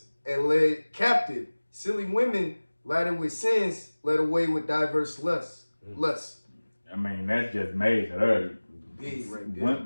and led captive silly women laden with sins, led away with diverse lusts. I mean, that's just major. Big right there.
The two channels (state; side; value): inverted; both; correlation -1.00